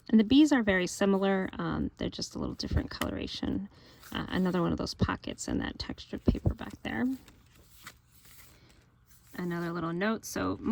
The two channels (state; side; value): identical; both; correlation 1.00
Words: And the bees are very similar. They're just a little different coloration. Another one of those pockets in that textured paper back there. Another little note. So